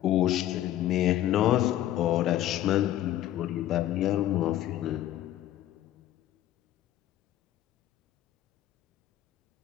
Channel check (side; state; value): right; quieter; 13.1 dB